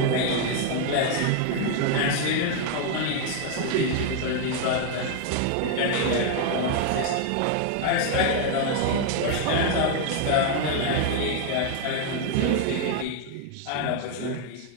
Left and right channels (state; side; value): different; both; correlation 0.00